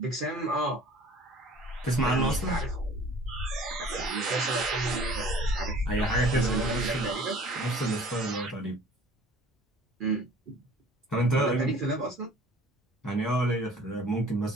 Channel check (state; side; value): normal; both; correlation 0.49